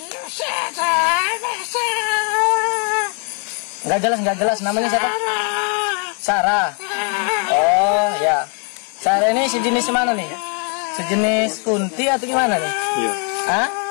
Enggak jelas namanya siapa? Sarah. Oh ya. Sarah ini sejenis mana nih? Sejenis kunti atau gimana nih? Iya. Hah?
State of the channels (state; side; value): quieter; right; 37.7 dB